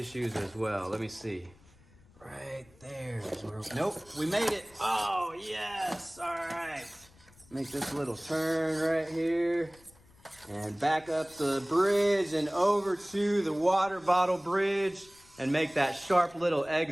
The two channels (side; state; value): left; noise; rumble, 27 dB below the sound